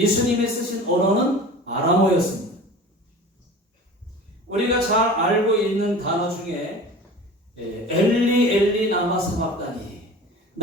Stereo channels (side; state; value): both; normal; correlation 0.38